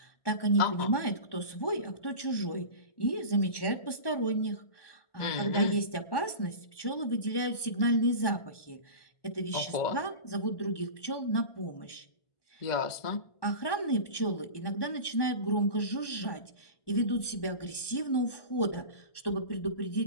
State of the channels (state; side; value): late; right; 1.4 ms